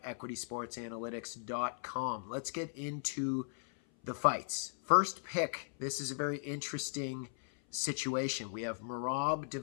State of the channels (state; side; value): silent; right; 53 dB below the other